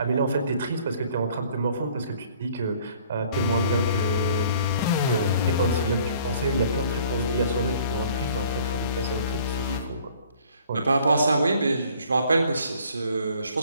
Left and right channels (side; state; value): both; inverted; correlation -0.55